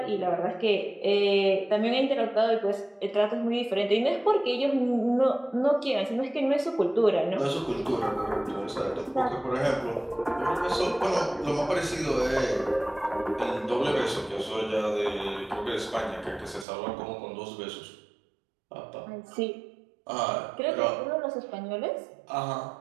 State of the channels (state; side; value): drops out; left; at 16.7 s